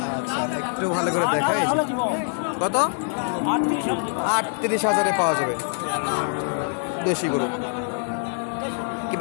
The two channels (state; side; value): silent; right; 62 dB below the other